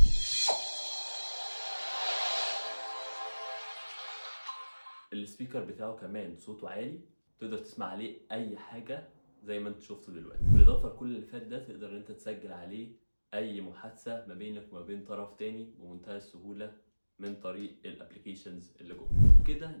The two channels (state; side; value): inverted; both; correlation -1.00